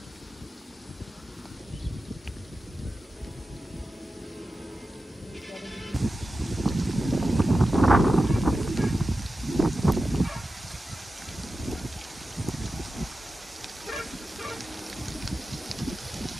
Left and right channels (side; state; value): both; normal; correlation 0.92